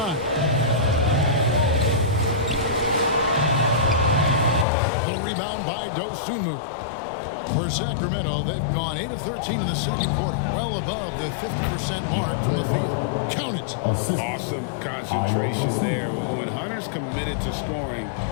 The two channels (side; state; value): right; drops out; at 4.7 s